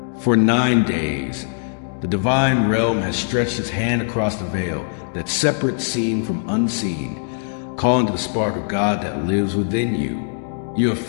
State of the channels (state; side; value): silent; right; digital silence